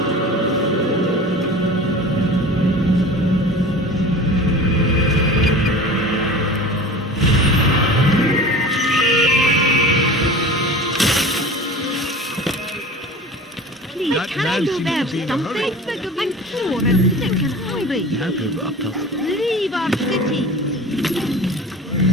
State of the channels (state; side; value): normal; both; correlation 0.37